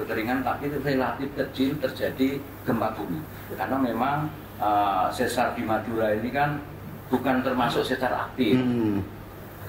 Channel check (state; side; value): identical; both; correlation 1.00